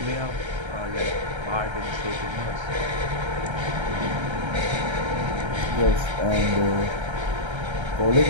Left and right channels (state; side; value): late; left; 1.3 ms